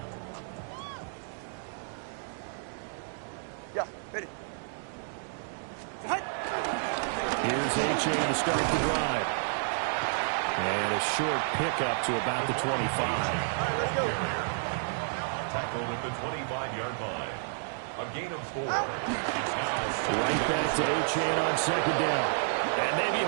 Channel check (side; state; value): left; silent; digital silence